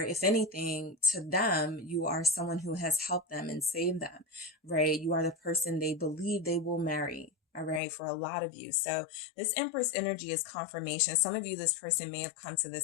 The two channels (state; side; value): drops out; right; at 7.8 s